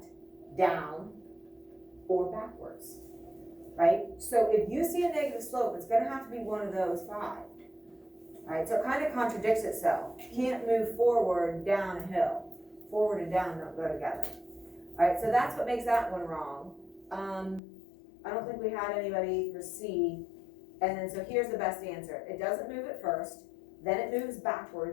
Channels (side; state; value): right; drops out; at 17.6 s